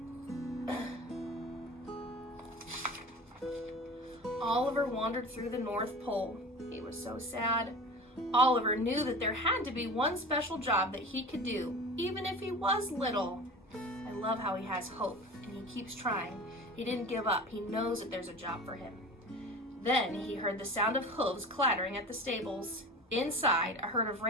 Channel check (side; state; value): both; normal; correlation 0.35